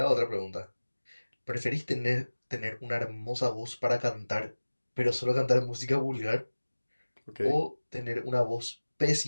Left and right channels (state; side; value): inverted; both; correlation -1.00